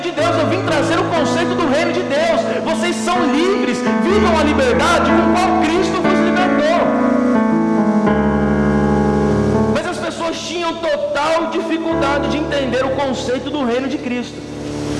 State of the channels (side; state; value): both; identical; correlation 1.00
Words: de Deus, eu vim trazer o conceito do reino de Deus. Vocês são livres, vivam a liberdade com qual Cristo vos libertou. Mas as pessoas tinham total dificuldade de entender o conceito do reino de Cristo.